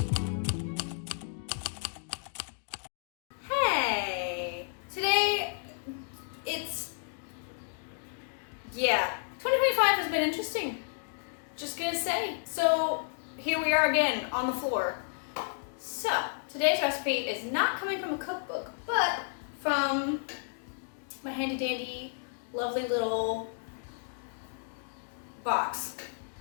Hey, today yeah, 2025 has been interesting. Just gonna say. So here we are again on the floor. So today's recipe is not coming from a cookbook, but from my handy dandy, lovely little box.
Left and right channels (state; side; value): silent; right; digital silence